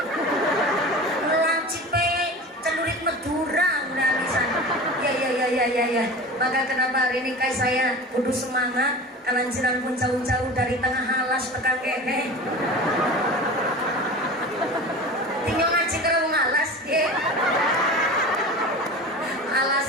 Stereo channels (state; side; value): normal; both; correlation 0.33